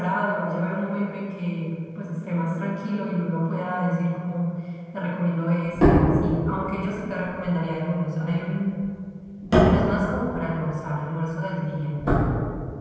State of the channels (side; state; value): both; identical; correlation 1.00